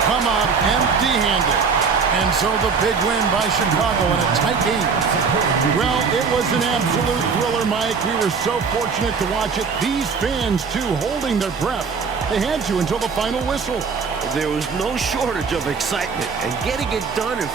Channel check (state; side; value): quieter; left; 5.5 dB